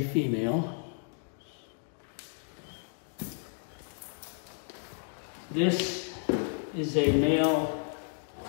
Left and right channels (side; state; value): right; silent; 56 dB below the other